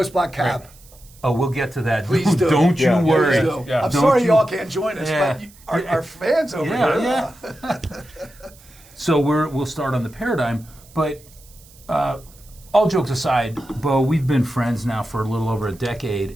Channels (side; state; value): right; noise; hiss, 25 dB below the sound